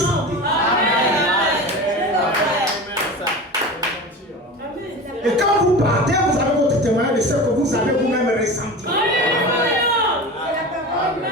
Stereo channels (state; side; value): normal; both; correlation 0.31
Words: Et quand vous partez, vous avez votre témoignage de ce que vous avez vous-même ressenti.